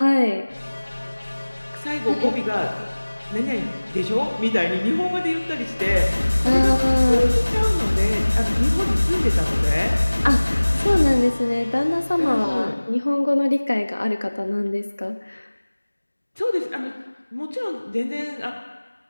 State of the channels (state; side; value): inverted; both; correlation -1.00